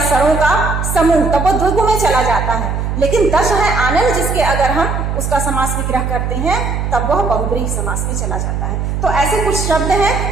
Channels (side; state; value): right; noise; hum, 2 dB below the sound